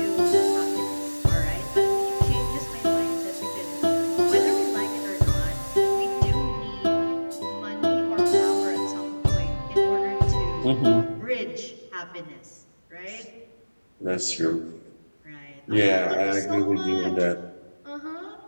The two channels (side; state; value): both; inverted; correlation -1.00